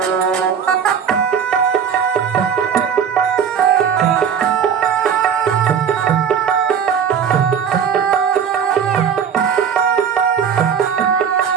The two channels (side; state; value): left; quieter; 7.6 dB